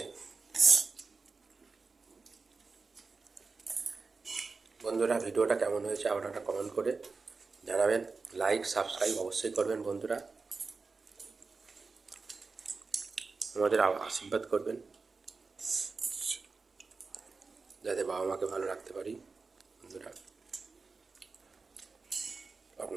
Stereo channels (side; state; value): left; quieter; 4.3 dB